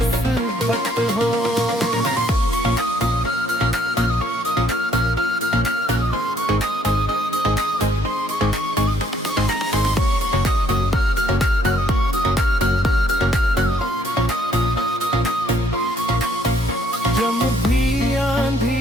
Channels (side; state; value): both; normal; correlation 0.66